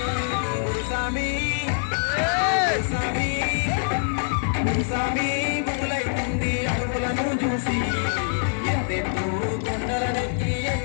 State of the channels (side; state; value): right; silent; digital silence